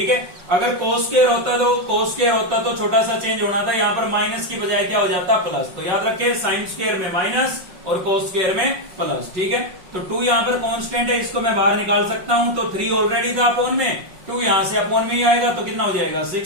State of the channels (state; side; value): late; left; 5.6 ms